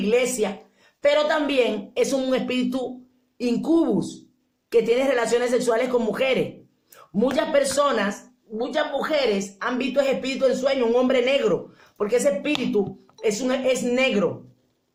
Pero también es un espíritu incubus, que tiene relaciones sexuales con mujeres. Muchas mujeres han visto ese espíritu en sueño, un hombre negro, porque ese espíritu es negro.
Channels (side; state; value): both; identical; correlation 1.00